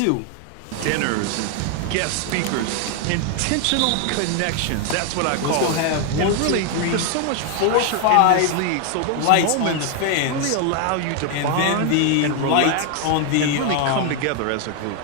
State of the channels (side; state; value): both; different; correlation 0.01